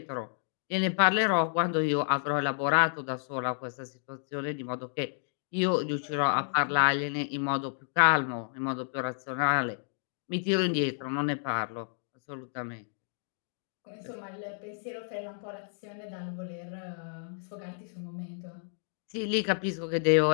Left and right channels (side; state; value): right; silent; digital silence